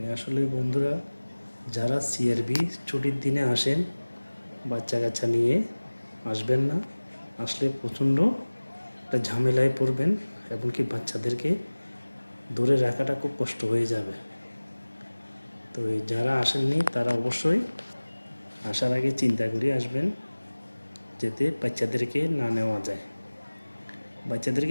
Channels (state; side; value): inverted; both; correlation -1.00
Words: আসলে বন্ধুরা, যারা সিআরবি ছুটির দিনে আসেন, বাচ্চা কাচ্চা নিয়ে আসবেন না। আসলে প্রচণ্ড একটা ঝামেলায় পড়বেন, এবং কি বাচ্চাদেরকে ধরে রাখাটা খুব কষ্ট হয়ে যাবে। তো যারা আসেননি তারা অবশ্যই আসার আগে চিন্তা করে আসবেন, যাতে বাচ্চাদেরকে না নেওয়া যায়।